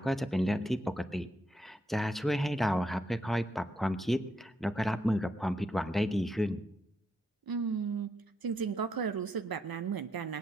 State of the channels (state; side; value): normal; both; correlation 0.79